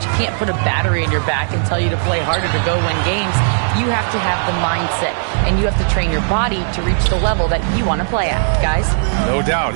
can't put a battery in your back and tell you to play harder to go win games. You have to have the mindset, and you have to train your body to reach the level that you want to play at, guys. No doubt,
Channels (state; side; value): silent; left; digital silence